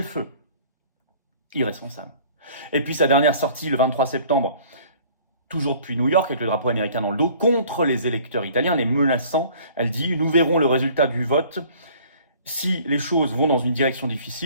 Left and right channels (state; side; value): inverted; both; correlation -0.52